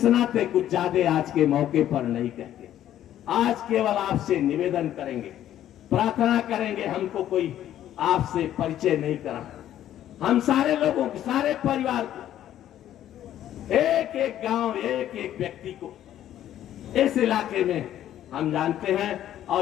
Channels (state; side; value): quieter; right; 11.8 dB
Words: नाते कुछ ज्यादा आज के मौके पर नहीं कहते। आज केवल आपसे निवेदन करेंगे, प्रार्थना करेंगे, हमको कोई आपसे परिचय नहीं करा। हम सारे लोगों को, सारे परिवार को, एक एक गांव, एक एक व्यक्ति को इस इलाके में हम जानते हैं